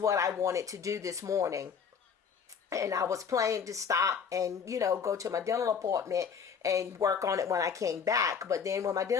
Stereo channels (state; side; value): quieter; right; 6.6 dB